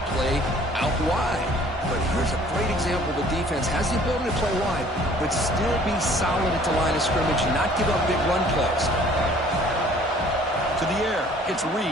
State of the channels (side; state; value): both; normal; correlation 0.54